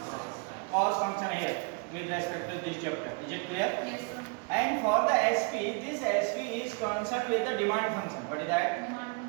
Cost function here with respect to this chapter. Is it clear? Yes, sir. And for the SP, this SP is concerned with the demand function. What is that?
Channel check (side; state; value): left; quieter; 34.0 dB